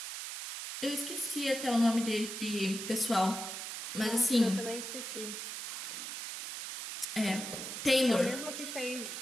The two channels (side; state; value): right; noise; hiss, 6 dB below the sound